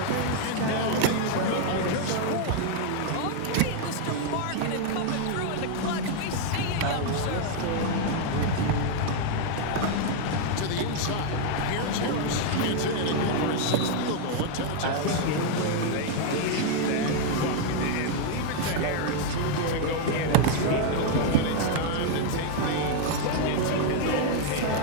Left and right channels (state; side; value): different; both; correlation 0.00